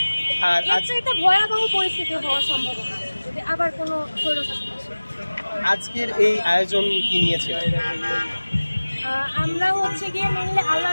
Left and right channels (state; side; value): inverted; both; correlation -1.00